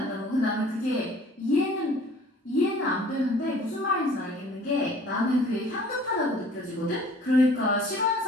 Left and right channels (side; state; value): both; normal; correlation 0.51